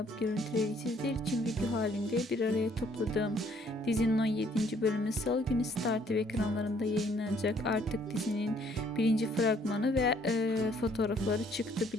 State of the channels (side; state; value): both; normal; correlation 0.64